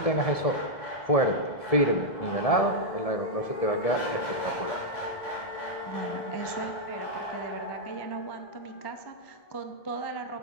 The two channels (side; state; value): right; late; 1.7 ms